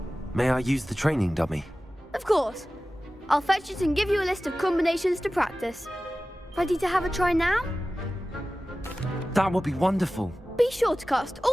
May I use the training dummy? Of course. I'll fetch it and give you a list of combinations to practice. Ready to have a try now? That would be wonderful. Be sure to cast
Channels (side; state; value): both; normal; correlation 0.96